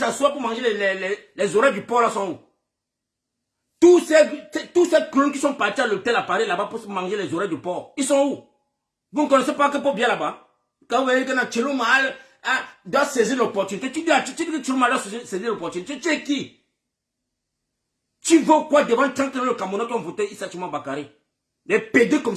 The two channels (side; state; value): both; identical; correlation 1.00